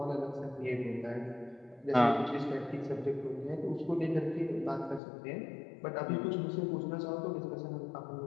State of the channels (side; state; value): right; drops out; at 5.0 s